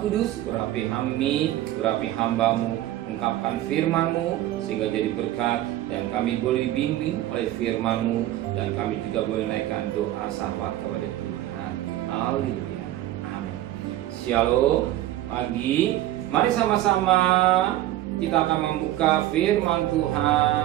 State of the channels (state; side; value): quieter; left; 14.2 dB